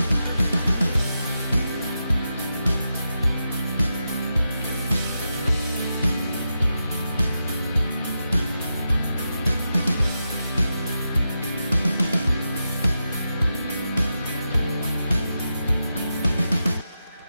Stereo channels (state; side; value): inverted; both; correlation -0.88